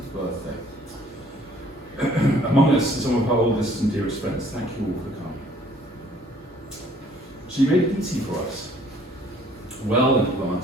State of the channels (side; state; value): both; normal; correlation 0.58